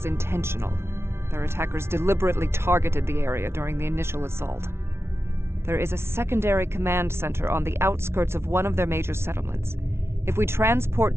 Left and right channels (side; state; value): left; late; 0.12 ms